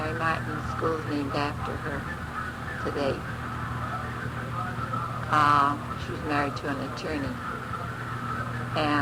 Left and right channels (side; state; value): both; identical; correlation 1.00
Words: Martin, the school's named after her today. She was married to an attorney.